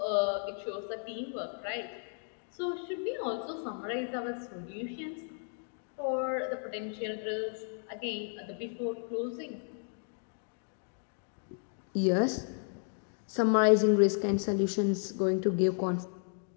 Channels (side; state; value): right; silent; 55 dB below the other